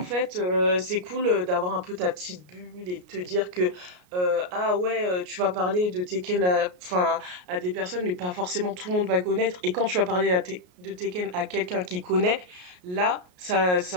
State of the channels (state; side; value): late; left; 33 ms